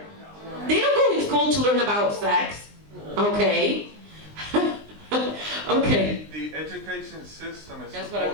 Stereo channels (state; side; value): late; left; 20 ms